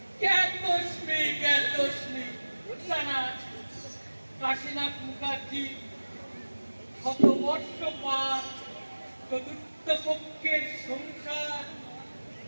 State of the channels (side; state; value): both; inverted; correlation -1.00